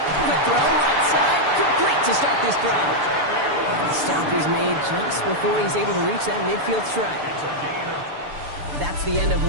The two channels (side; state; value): left; late; 6.9 ms